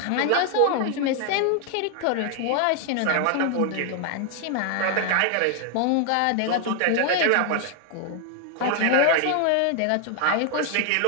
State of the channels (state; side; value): different; both; correlation 0.00